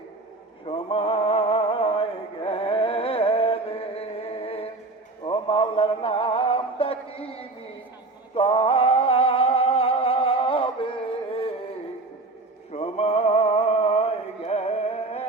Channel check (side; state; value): left; quieter; 3.2 dB